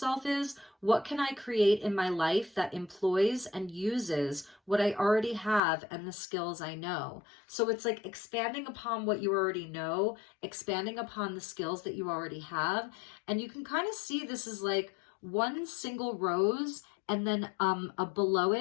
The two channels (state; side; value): drops out; right; at 5.6 s